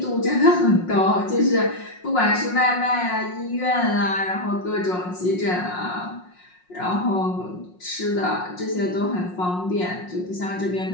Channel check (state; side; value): late; right; 5.5 ms